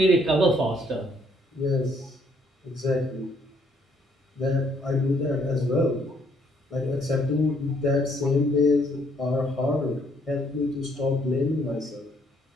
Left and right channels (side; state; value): both; normal; correlation 0.67